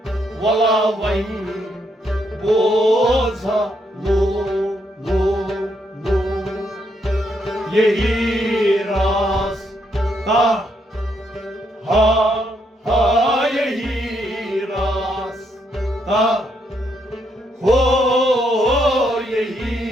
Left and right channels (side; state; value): both; normal; correlation 0.76